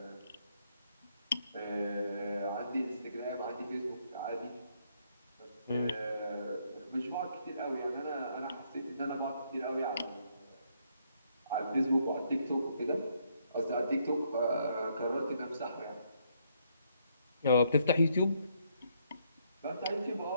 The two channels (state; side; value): inverted; both; correlation -0.72